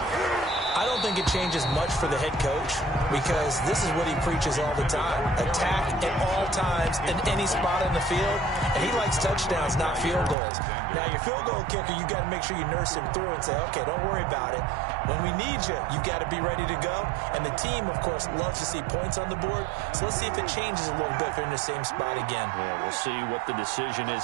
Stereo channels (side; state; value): left; drops out; at 10.4 s